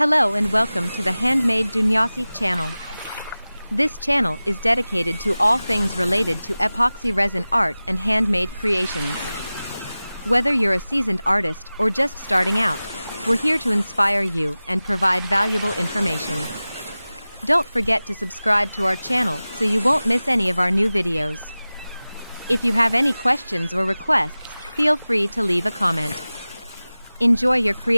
and welcome to the HandMade Dunyasi channel. This channel is dedicated to all things related to epoxy resin art and handmade creations. Whether you're a seasoned artist or just starting out, we're here to inspire you and provide valuable information. Don't forget to subscribe to our channel so you won't miss any of our new videos. If you have any questions or requests, feel free to leave a comment. Enjoy your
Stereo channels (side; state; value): both; inverted; correlation -0.97